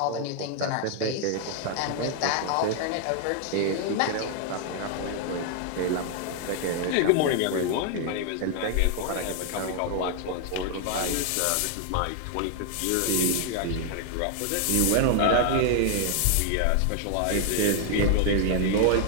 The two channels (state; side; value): different; both; correlation 0.00